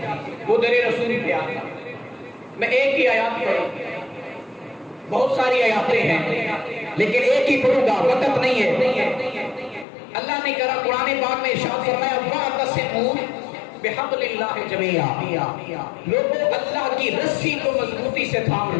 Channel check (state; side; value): drops out; right; at 9.9 s